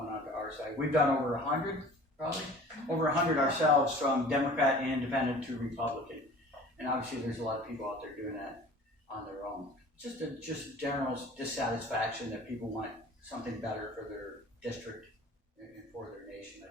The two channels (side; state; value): both; normal; correlation 0.45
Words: our side. We've done over 100, probably. Over 100 ourselves, from Democrat and independent to Republican. And obviously there's a lot of people out there doing that on their own. Just general dissatisfaction that people want something better for their district and for their nation,